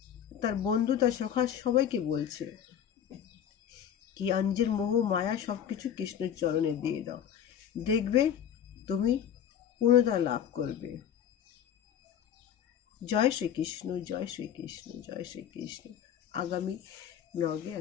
তার বন্ধু, তার সখা সবাইকে বলছে কি আঞ্জের মোহ মায়া সবকিছু কৃষ্ণের চরণে দিয়ে দাও, দেখবে তুমি পূর্ণতা লাভ করবে। জয় শ্রীকৃষ্ণ, জয় শ্রীকৃষ্ণ, জয় শ্রীকৃষ্ণ। আগামী ব্লগে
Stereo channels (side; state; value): right; quieter; 9.2 dB